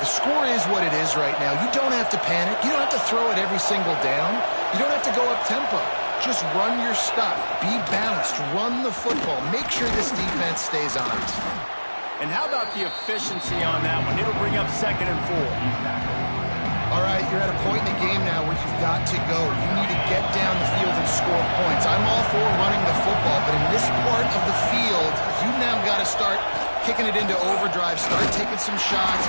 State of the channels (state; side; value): inverted; both; correlation -1.00